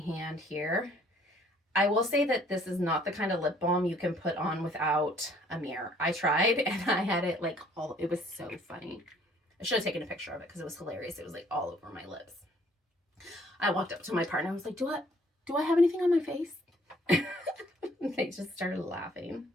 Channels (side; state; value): both; normal; correlation 0.60